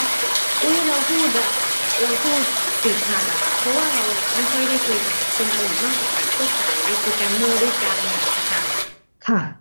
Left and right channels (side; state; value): both; inverted; correlation -1.00